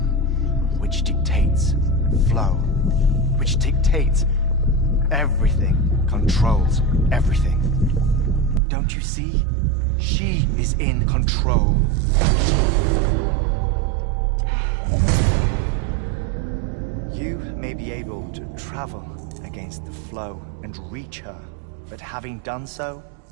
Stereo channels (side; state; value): left; drops out; at 8.6 s